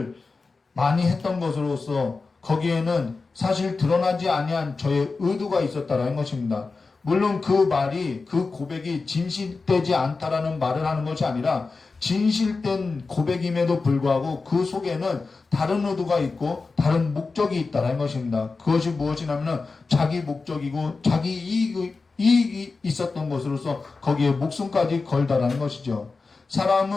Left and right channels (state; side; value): quieter; right; 4.1 dB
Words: 많이 했던 것으로서 거기에는 사실 드러나지 아니한 저의 의도가 있었다라는 것입니다. 물론 그 말이, 그 고백이 진실되지 않다라는 말을 하는 것이 아니라 진실된 고백임에도 불구하고 그 속에는 다른 의도가 있고 다른 목적이 있다라는 것입니다. 그것이 무엇이냐면 자기 목적이고 자기 이익이 있었던 것으로서 거기에 목숨까지 걸다라는 것이죠.